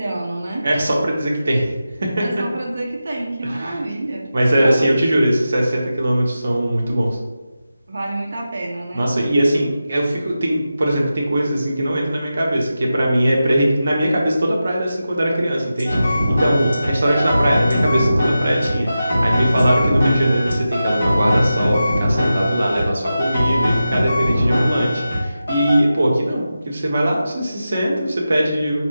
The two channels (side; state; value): both; inverted; correlation -0.92